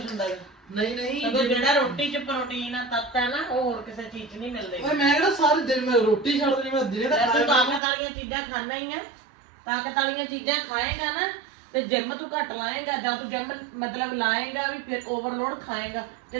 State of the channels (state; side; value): drops out; left; at 7.8 s